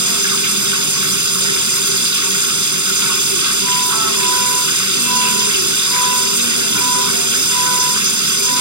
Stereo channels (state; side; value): late; left; 0.83 ms